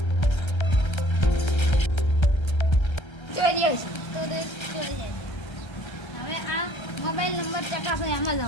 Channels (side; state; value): right; late; 1.3 ms